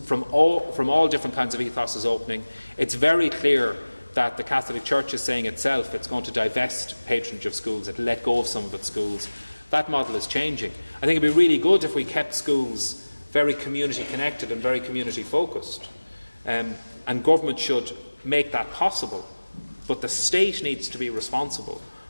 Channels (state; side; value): inverted; both; correlation -1.00